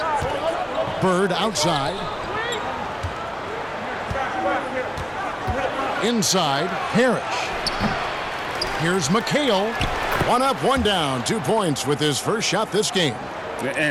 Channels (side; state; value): both; identical; correlation 1.00